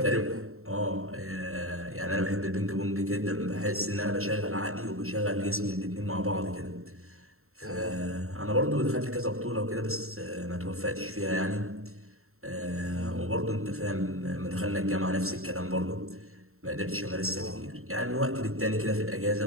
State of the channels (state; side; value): late; left; 0.63 ms